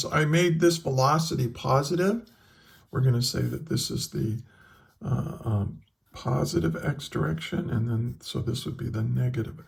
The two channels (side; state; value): both; identical; correlation 1.00